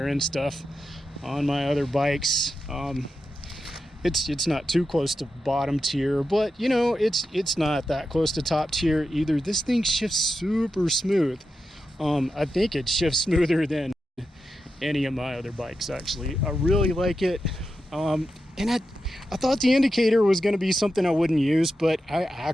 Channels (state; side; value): normal; both; correlation 0.89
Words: end stuff on my other bikes. It's not too close to bottom tier, but it's not that close to top tier either. This thing shifts super smooth. I think it shifts smoother than any of my other bikes, actually. I really like it. And I thought the indicator was going to be something I wouldn't use, but I